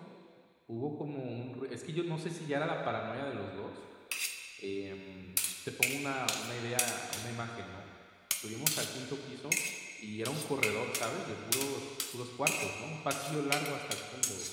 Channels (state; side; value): identical; both; correlation 1.00